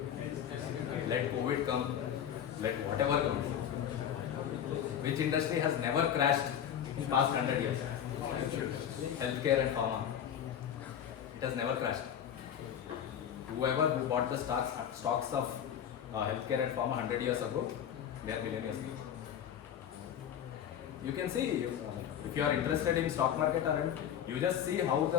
Let COVID come, let whatever come. Which industry has never crashed in past 100 years? Healthcare and pharma. It has never crashed. Whoever who bought the stocks of healthcare and pharma 100 years ago, they are millionaires. You can see, if you are interested in stock market, you just see how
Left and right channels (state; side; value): quieter; right; 9.4 dB